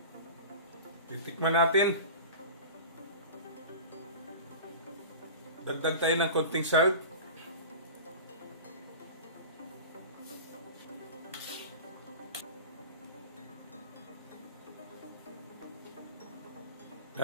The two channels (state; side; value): inverted; both; correlation -0.35